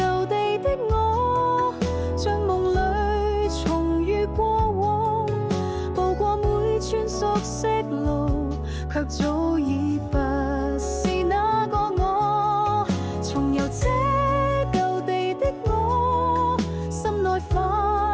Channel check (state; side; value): identical; both; correlation 1.00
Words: 地的我，像夢裏重遇過往，步過每寸熟悉路，卻早已不是那個我。重遊這舊地的我，心內